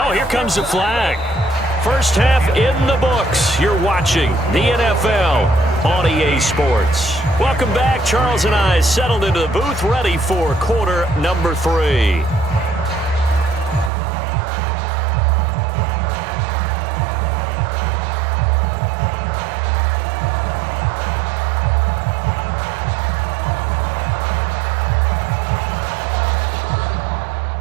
here comes the flag. First half in the books. You're watching the NFL on EA Sports. Welcome back. Charles and I settled into the booth, ready for quarter number 3.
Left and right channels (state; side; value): drops out; left; at 13.9 s